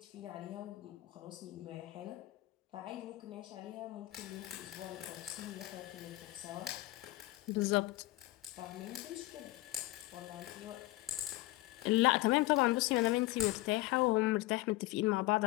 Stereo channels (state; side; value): quieter; right; 18.6 dB